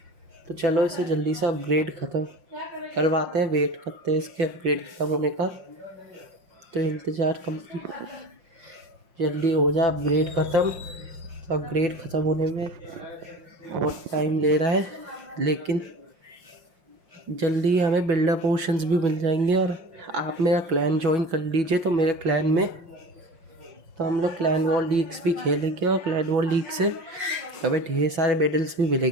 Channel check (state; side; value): late; left; 5.6 ms